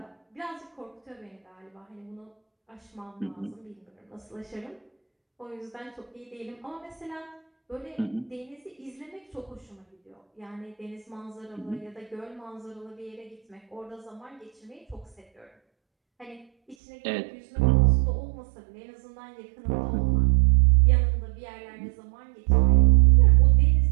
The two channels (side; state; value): left; drops out; at 16.8 s